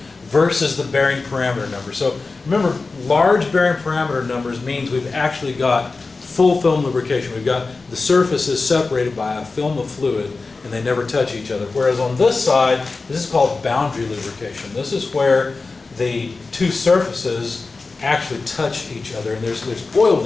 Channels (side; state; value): right; quieter; 3.9 dB